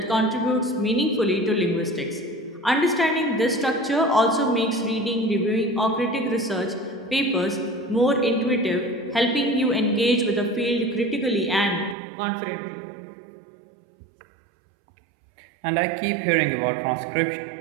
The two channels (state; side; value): drops out; left; at 12.0 s